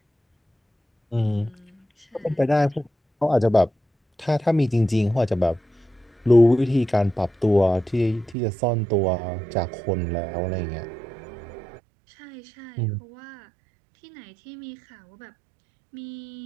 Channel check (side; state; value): left; drops out; at 8.3 s